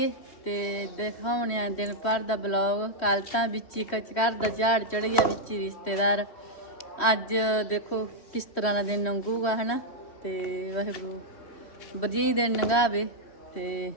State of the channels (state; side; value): late; right; 3.1 ms